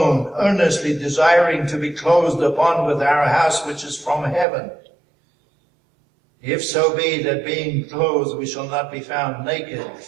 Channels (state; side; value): drops out; left; at 4.5 s